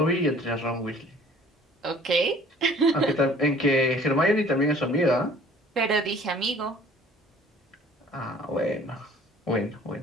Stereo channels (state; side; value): normal; both; correlation 0.52